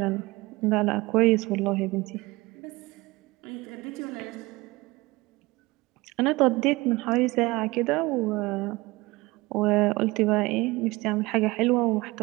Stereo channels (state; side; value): quieter; left; 21.8 dB